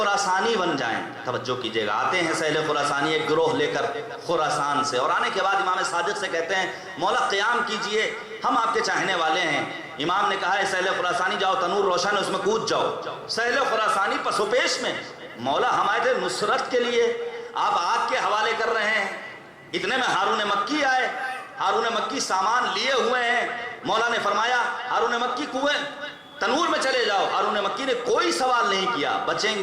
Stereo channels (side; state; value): both; identical; correlation 1.00